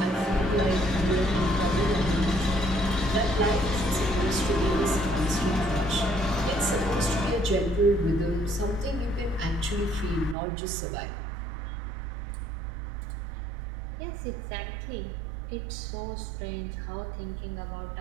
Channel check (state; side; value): drops out; left; at 10.4 s